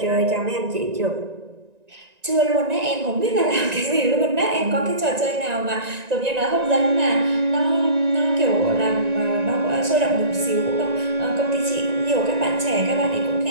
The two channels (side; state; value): left; late; 1.9 ms